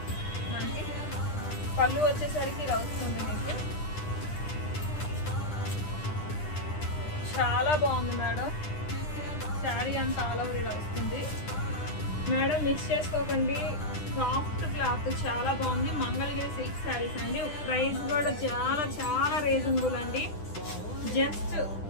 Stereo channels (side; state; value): right; late; 10 ms